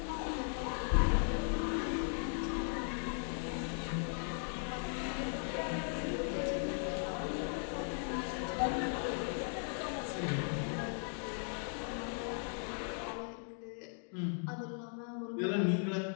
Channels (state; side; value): silent; right; 53 dB below the other